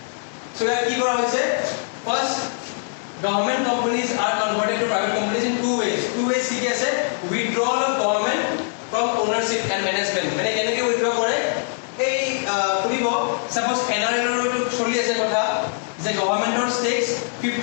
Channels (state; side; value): silent; right; 64 dB below the other